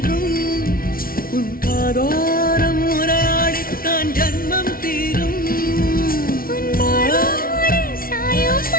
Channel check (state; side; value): late; right; 0.43 ms